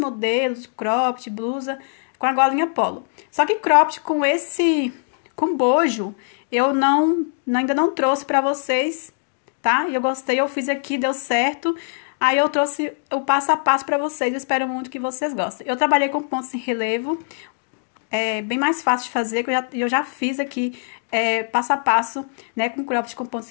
de cropped, blusa com a golinha polo. Só que cropped com bojo, eu ainda não trouxe pra vocês, tá? Eu gostei, eu fiz aqui, deu certo. Aí eu trouxe o passo a passo pra vocês, eu espero muito que vocês gostem. Eu trabalhei com pontos em relevo, é bem mais fácil de fazer, que eu já fiz aqui passo a passo, né, com cropped com pontos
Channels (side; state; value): right; silent; 64 dB below the other